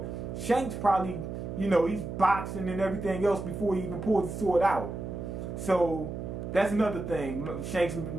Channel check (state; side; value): noise; right; hum, 6 dB below the sound